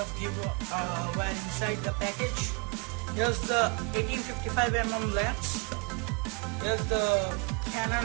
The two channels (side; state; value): left; quieter; 32.4 dB